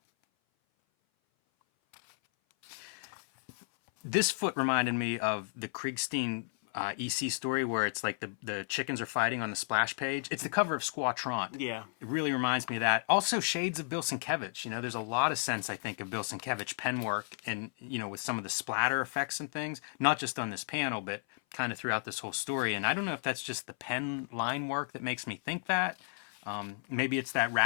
This foot reminded me of the Kriegstein EC story where it's like the chickens are fighting on the splash page. It's the cover of Squatron. Yeah. It really reminds me of that. Also, shades of Bill Sienkiewicz. You know, there's a lot of sense, I think, of Bill Sienkiewicz pen work and, you know, with some of the splatter effects and things. Not just on this panel, but kind of throughout this whole story. And I don't know if that's just the pen line work that makes me think that. Maybe it's that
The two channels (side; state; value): right; silent; 55 dB below the other